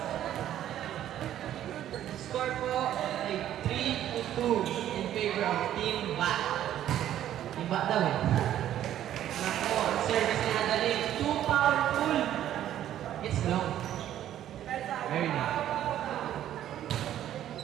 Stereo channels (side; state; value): left; quieter; 11.7 dB